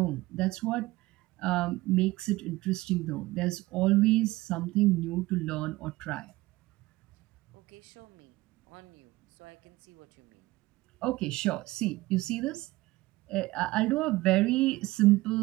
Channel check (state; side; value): quieter; left; 19.4 dB